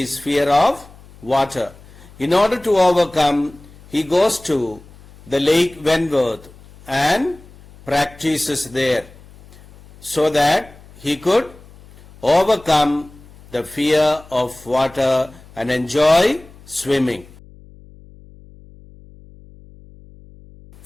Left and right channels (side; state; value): left; noise; hum, 23 dB below the sound